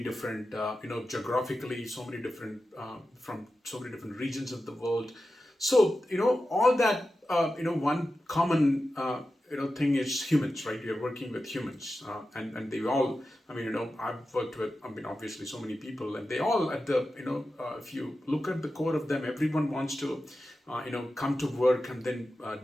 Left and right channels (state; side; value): normal; both; correlation 0.92